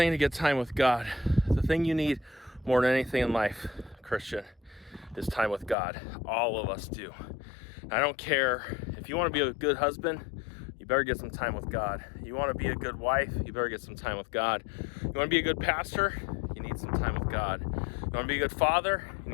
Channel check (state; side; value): drops out; right; at 5.8 s